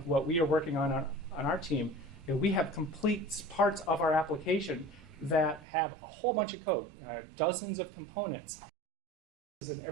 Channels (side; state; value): left; drops out; at 5.7 s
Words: what we are working on our team, we have complete parts of our application that have a whole bunch of code, dozens of components, and